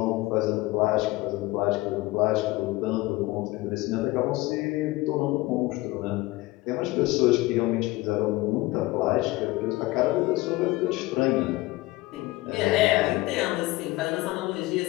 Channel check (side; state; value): right; quieter; 20.1 dB